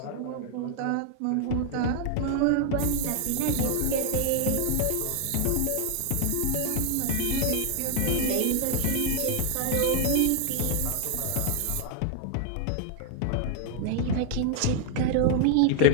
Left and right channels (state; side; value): different; both; correlation 0.00